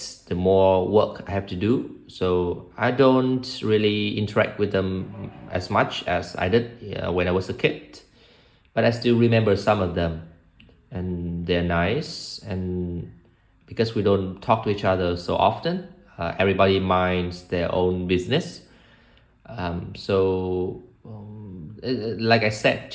the more work I have to do. So I don't really interact with them as much as I did when I was a kid. But I still remember some of them, and they're nice. And because we don't talk to each other so often, everybody minds their own business. Like I said,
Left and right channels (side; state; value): both; identical; correlation 1.00